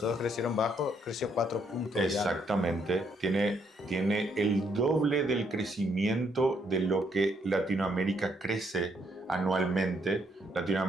crecieron bajo, creció 4 puntos. Exactamente. Tiene el doble del crecimiento de lo que Latinoamérica crece anualmente.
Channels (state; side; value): normal; both; correlation 0.72